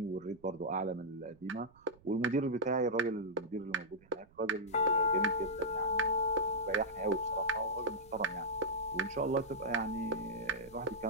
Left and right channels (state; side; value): noise; right; rumble, 28 dB below the sound